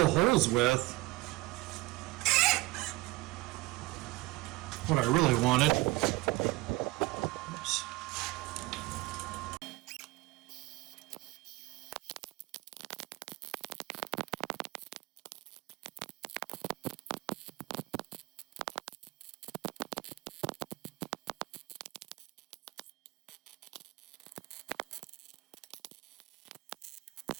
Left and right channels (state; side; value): quieter; left; 21.2 dB